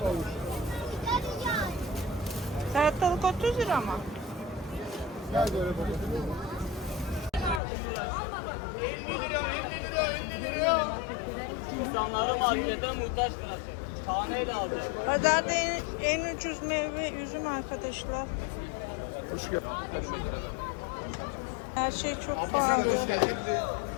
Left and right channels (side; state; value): right; drops out; at 7.6 s